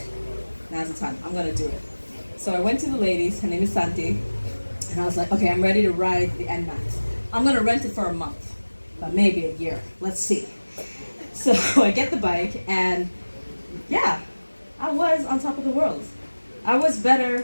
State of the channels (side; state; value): both; inverted; correlation -1.00